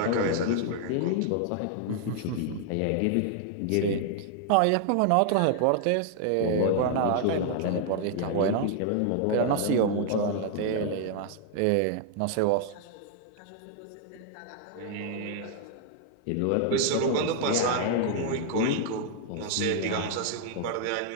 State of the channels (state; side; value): different; both; correlation 0.00